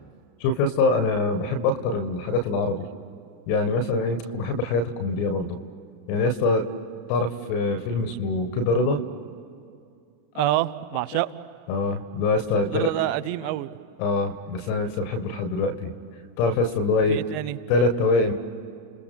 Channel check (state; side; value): late; right; 34 ms